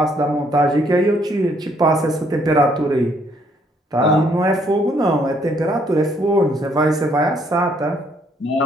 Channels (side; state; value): both; normal; correlation 0.67